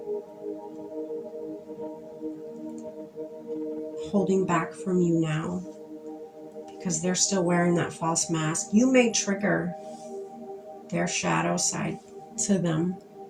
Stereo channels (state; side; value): identical; both; correlation 1.00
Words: Holding back from you now because they're still wearing that false mask. You may trigger their shadow side to them